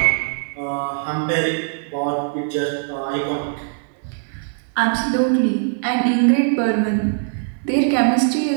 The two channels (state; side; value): silent; left; 58 dB below the other